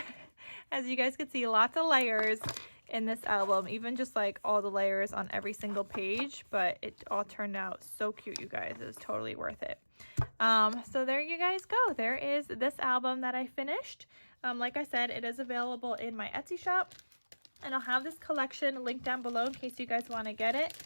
As you guys can see, lots of layers in this album, even just like all the layers on every single page, but it all turned out so cute, you guys. It was totally worth it. So there you guys go. There is this album that I finished. Like I said, it is available in my Etsy shop, and I'll have this collection linked down below in case you guys want to get it.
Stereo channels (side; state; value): both; inverted; correlation -1.00